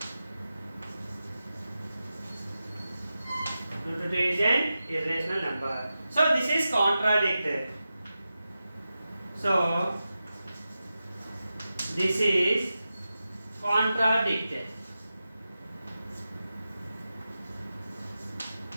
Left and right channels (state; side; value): inverted; both; correlation -0.92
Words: Root 2 is an irrational number. So this is contradicted. So this is contradicted.